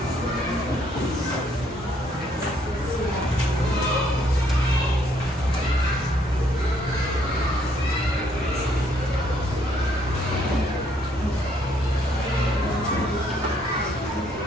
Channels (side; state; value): both; normal; correlation 0.68